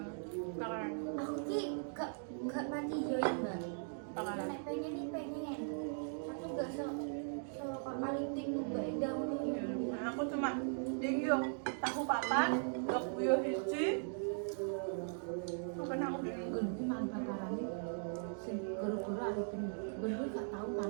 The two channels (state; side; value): silent; left; digital silence